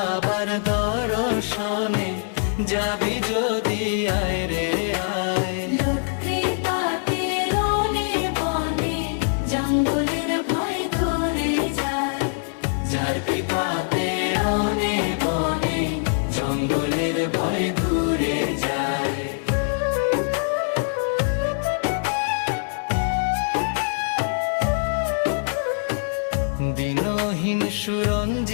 দর্শনে যাবি যদি আয় রে আয়। লোক কৃপাতে রনে বনে জঙ্গলের ভয় দূরে যায়। যার কৃপাতে রনে বনে জঙ্গলের ভয় দূরে যায়। দিনহীন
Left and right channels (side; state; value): right; silent; digital silence